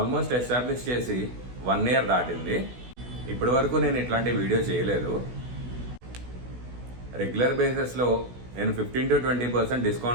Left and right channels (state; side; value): late; left; 16 ms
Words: establish చేసి 1 year దాటింది. ఇప్పటి వరకు నేను ఇట్లాంటి వీడియో చేయలేదు. రెగ్యులర్ బేసిస్లో నేను 15 to 20%